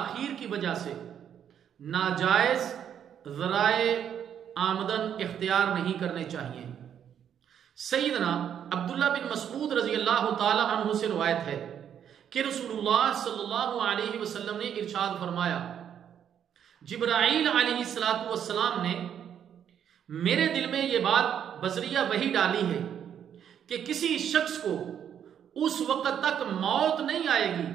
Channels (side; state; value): left; quieter; 9.0 dB